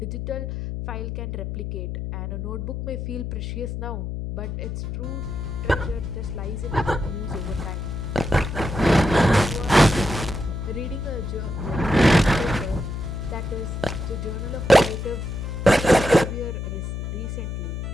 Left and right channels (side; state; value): left; noise; hum, 5 dB below the sound